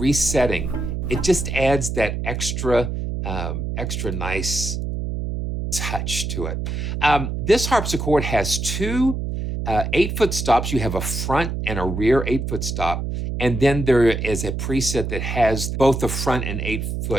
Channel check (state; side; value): noise; right; hum, 3 dB below the sound